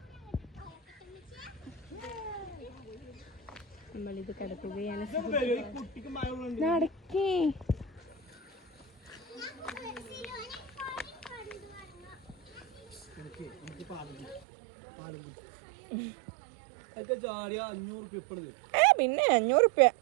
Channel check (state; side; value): drops out; left; at 14.4 s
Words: നമ്മളിത് കിടക്കുകയാണ്. നടക്കേ. ചാടിയ 500 ഇപ്പഴും പിന്നെ 500 റുപ്യ